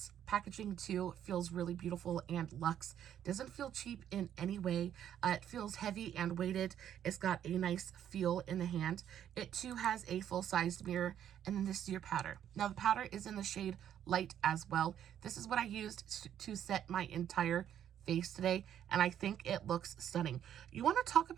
packaging too feels really beautiful and luxe. Doesn't feel cheap in any way. It feels heavy and weighted. It's got a nice feel in the hand. It too has a full-sized mirror, and then this is your powder. Now the powder is in the shade light as well. This is what I used to set my entire face today, and I think it looks stunning. You want to talk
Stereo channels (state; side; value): quieter; left; 10.1 dB